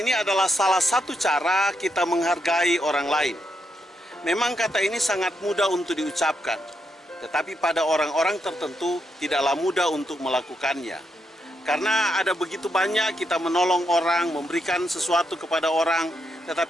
ini adalah salah satu cara kita menghargai orang lain. Memang kata ini sangat mudah untuk diucapkan, tetapi pada orang-orang tertentu tidaklah mudah untuk melakukannya. Karena ada begitu banyak kita menolong orang, memberikan sesuatu kepada orang,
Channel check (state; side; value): normal; both; correlation 0.81